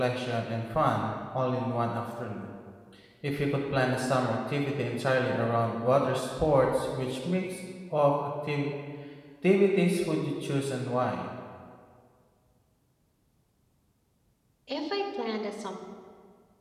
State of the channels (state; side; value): identical; both; correlation 1.00